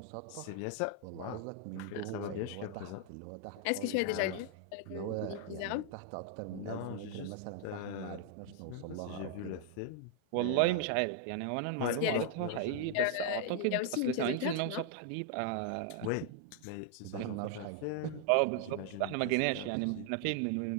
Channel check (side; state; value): both; different; correlation 0.00